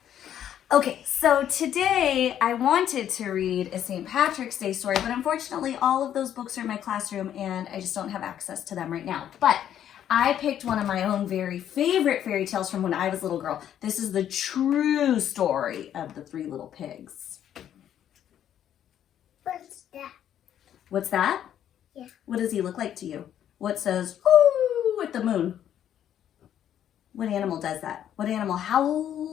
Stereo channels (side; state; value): right; quieter; 10.3 dB